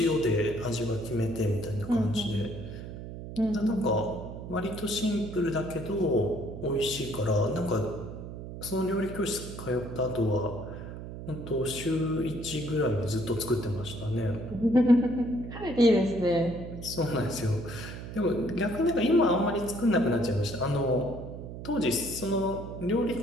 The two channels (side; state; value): right; noise; hum, 10 dB below the sound